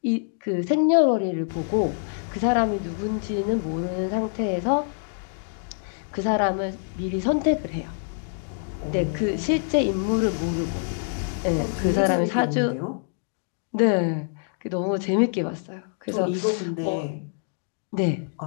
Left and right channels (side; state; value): right; silent; digital silence